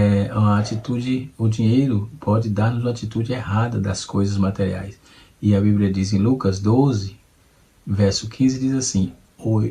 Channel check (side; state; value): both; identical; correlation 1.00